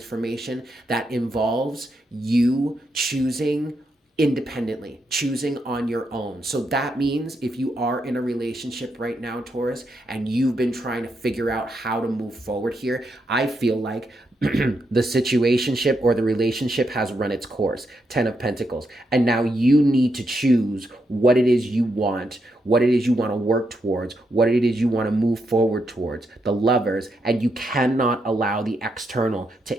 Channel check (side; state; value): both; normal; correlation 0.81